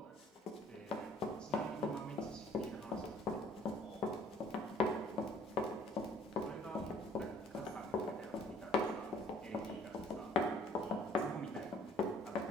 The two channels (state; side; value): normal; both; correlation 0.57